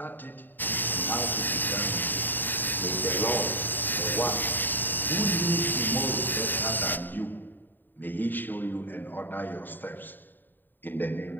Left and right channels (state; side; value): late; right; 0.091 ms